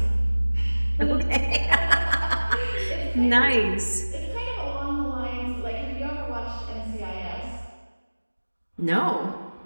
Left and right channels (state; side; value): inverted; both; correlation -1.00